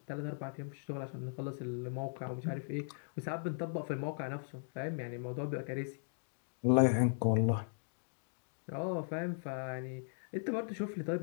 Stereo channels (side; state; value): right; silent; digital silence